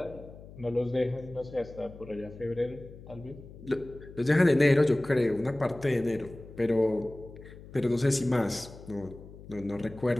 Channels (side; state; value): left; noise; hum, 17 dB below the sound